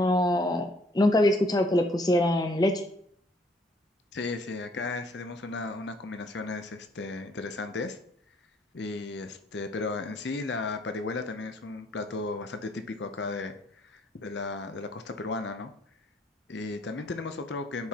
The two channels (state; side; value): normal; both; correlation 0.64